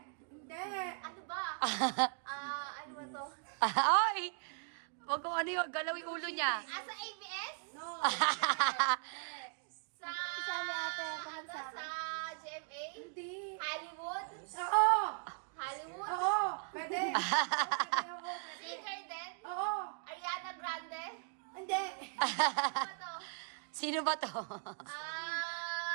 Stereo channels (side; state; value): left; silent; 52 dB below the other